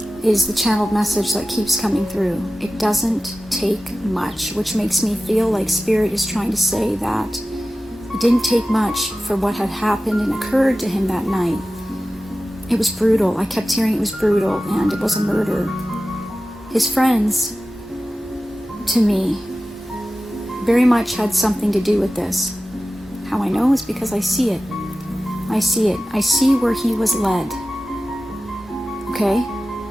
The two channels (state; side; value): normal; both; correlation 0.95